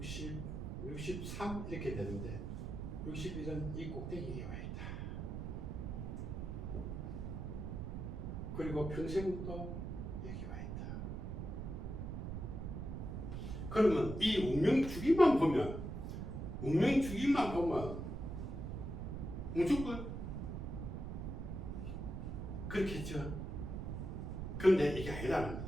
63 이렇게 되는데 61은 이 꼭대기에 와 있다. 그리고 평생도 여기 와 있다. 그러면 이 운명주기만 보면 무조건 그렇겠죠. 그런데 이게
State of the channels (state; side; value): noise; right; rumble, 5 dB below the sound